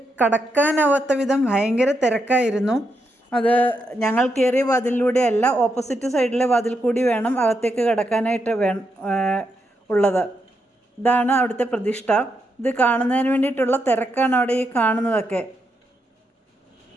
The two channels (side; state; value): both; normal; correlation 0.82